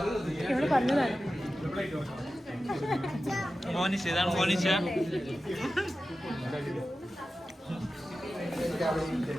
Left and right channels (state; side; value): normal; both; correlation 0.94